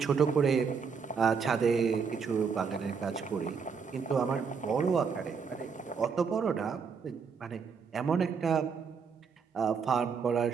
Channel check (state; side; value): quieter; left; 5.9 dB